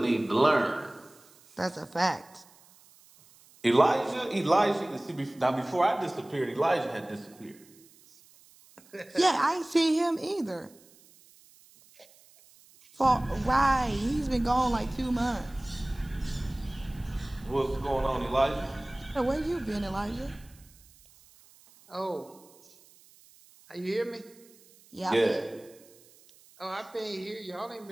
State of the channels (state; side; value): noise; right; hiss, 27 dB below the sound